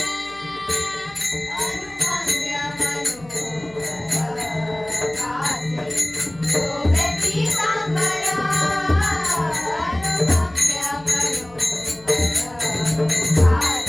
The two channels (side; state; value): left; noise; hum, 24 dB below the sound